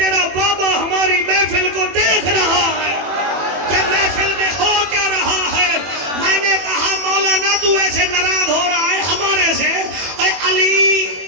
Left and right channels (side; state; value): left; late; 21 ms